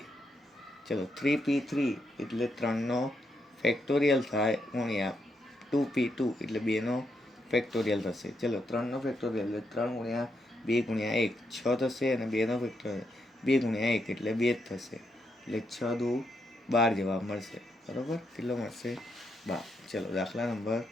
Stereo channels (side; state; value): both; normal; correlation 0.80